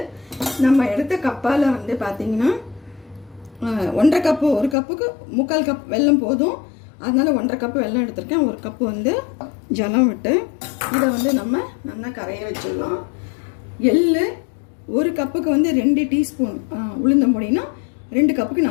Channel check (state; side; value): drops out; right; at 4.8 s